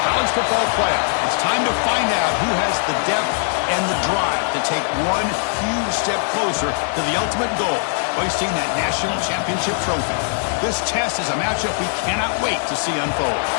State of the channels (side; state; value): right; silent; digital silence